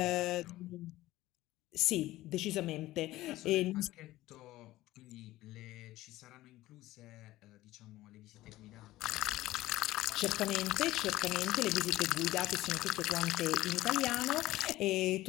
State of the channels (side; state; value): right; quieter; 16.6 dB